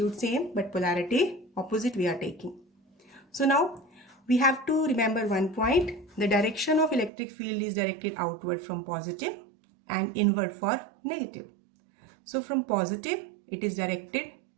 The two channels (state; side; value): drops out; left; at 7.1 s